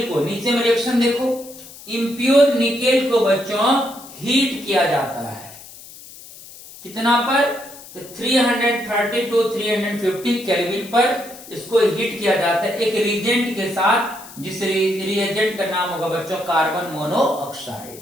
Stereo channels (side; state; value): left; noise; hiss, 18 dB below the sound